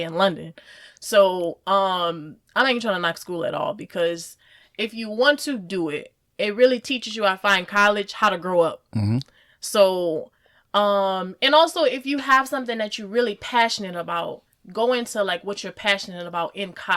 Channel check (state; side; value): identical; both; correlation 1.00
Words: London. So I'm not even trying to knock school at all, because if you want to do it, it really teaches you, I find, college, how to grow up. Mm-hmm. So, and also if you have something that you're really passionate about, go into like what you're passionate about in